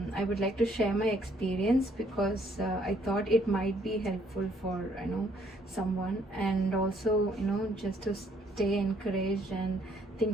would like to share my experience because I thought it might be helpful for someone, and also just to stay encouraged and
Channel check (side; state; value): both; normal; correlation 0.65